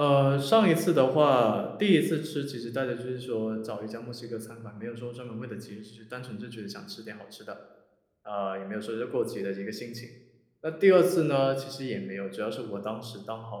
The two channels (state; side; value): identical; both; correlation 1.00